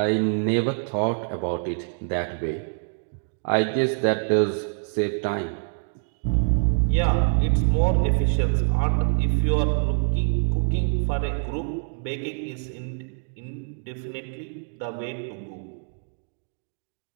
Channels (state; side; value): silent; left; 56 dB below the other